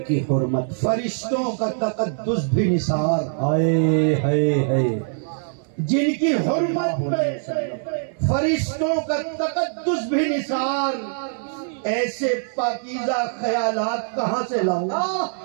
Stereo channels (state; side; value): silent; left; 61 dB below the other